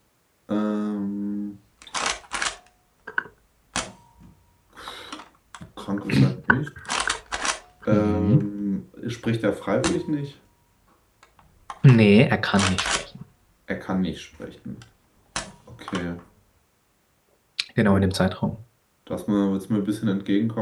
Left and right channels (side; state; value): both; identical; correlation 1.00